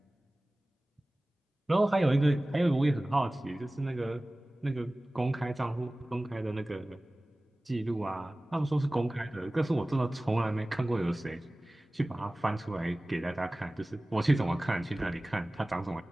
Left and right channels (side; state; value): both; normal; correlation 0.98